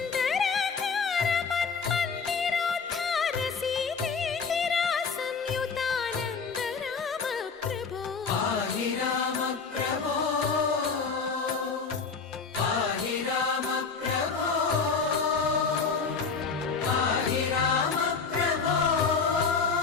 మన్మందిరోద్ధార సీతేందిరా సంయుతానంద రామ ప్రభో. పాహి రామ ప్రభో పాహి రామ ప్రభో పాహి రామ ప్రభో.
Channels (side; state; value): right; quieter; 5.2 dB